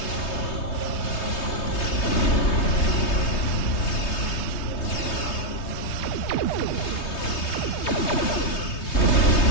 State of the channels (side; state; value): right; late; 3.2 ms